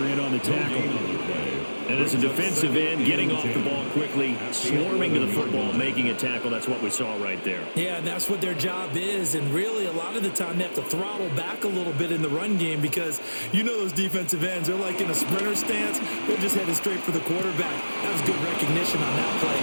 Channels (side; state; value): both; inverted; correlation -1.00